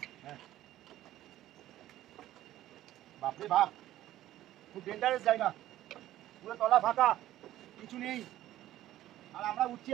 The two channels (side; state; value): left; quieter; 13.9 dB